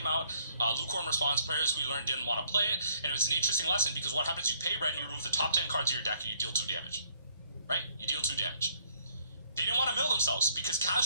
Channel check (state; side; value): inverted; both; correlation -0.65